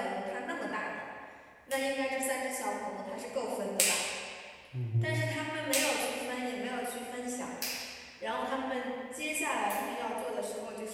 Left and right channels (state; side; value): identical; both; correlation 1.00